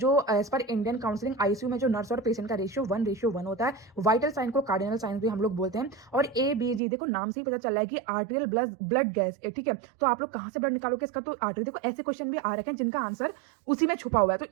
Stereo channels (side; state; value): left; drops out; at 6.8 s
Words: as per Indian counselling ICU में जो नर्स और पेशेंट का रेशियो 1:1 होता है। वाइटल साइन को कार्डिनल साइन भी हम लोग बोलते हैं। और ABG देखो नाम से ही पता चल रहा है कि आर्टेरियल ब्लड गैस, ठीक है। तो आप लोग कहाँ से ब्लड निकालोगे इसका, तो आर्टरी। देखो ऐसे क्वेश्चन भी आ रखे हैं जिनका आंसर उसी में छुपा हुआ है, तो